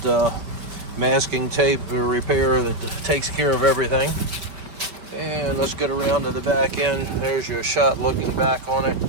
masking tape repair that takes care of everything. And let's get around to the back end. There's your shot looking back on it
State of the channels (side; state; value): left; late; 5.2 ms